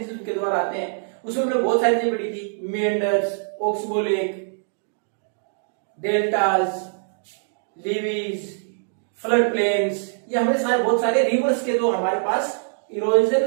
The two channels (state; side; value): silent; left; digital silence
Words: उनके द्वारा आते हैं. उसमें हमने बहुत सारी चीजें पढ़ी थी. Meanders, oxbow lake, deltas, levees, flood plains, ये हमने सारे बहुत सारे रिवर्स के जो हमारे पास